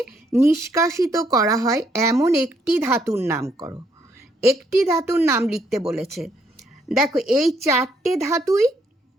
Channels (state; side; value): normal; both; correlation 0.71